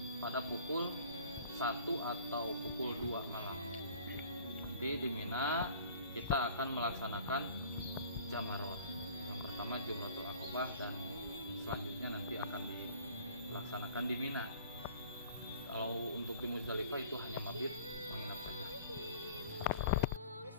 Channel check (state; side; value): inverted; both; correlation -0.49